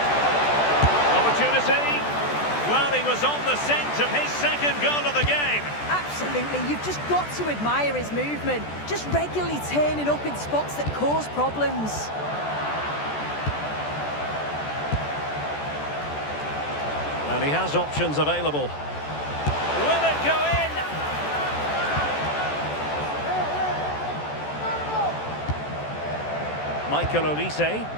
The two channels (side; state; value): right; late; 14 ms